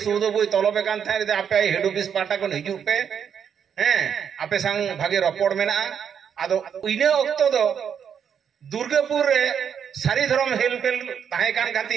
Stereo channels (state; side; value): quieter; left; 7.8 dB